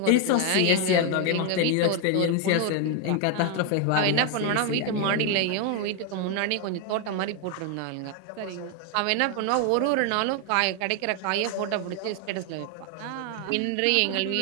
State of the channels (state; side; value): different; both; correlation 0.01